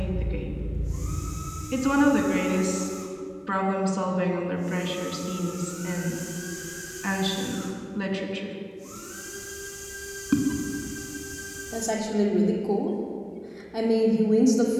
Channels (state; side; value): identical; both; correlation 1.00